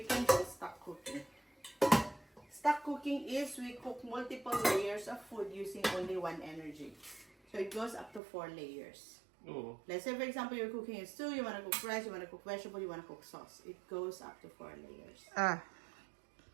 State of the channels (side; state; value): left; drops out; at 8.2 s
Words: can do stock cooking. Stock cooking is we cook multiple layers of food using only one energy. So it goes up to 4 layers. Oh. Let's say, for example, you're cooking a stew, you want to cook rice, you want to cook vegetable, you want to cook sauce. It goes up to 4 layers. Ah.